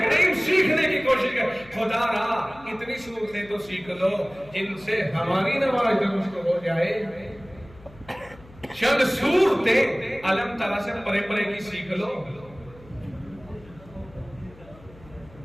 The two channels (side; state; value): left; noise; hum, 23 dB below the sound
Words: کریم سیکھنے کی کوشش کر۔ خدا را اتنی صورتیں تو سیکھ لو جن سے ہماری نماز درست ہو جائے۔ چند صورتیں علم ترا سے پرے پرے کی سیکھ لو۔